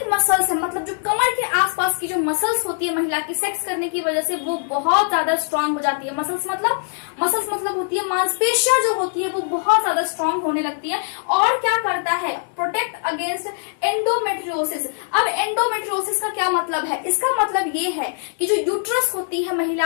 मसल्स है मतलब जो कमर के आसपास की जो मसल्स होती है महिला की सेक्स करने की वजह से वो बहुत ज्यादा स्ट्रांग हो जाती है। मसल्स मतलब होती है मांसपेशियां जो होती है वो बहुत ज्यादा स्ट्रांग होने लगती है। और क्या करता है, प्रोटेक्ट अगेंस्ट एंडोमेट्रियोसिस। अब एंडोमेट्रियोसिस का क्या मतलब है, इसका मतलब ये है कि जो यूट्रस होती है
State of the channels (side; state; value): right; silent; digital silence